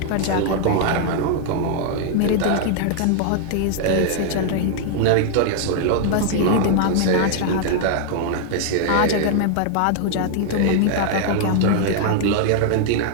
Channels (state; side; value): different; both; correlation 0.00